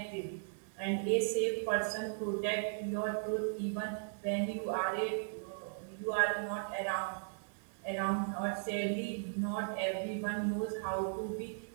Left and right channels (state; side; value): silent; left; digital silence